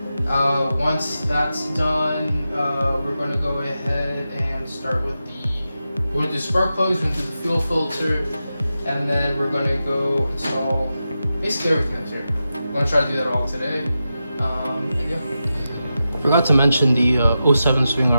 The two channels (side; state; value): both; inverted; correlation -0.90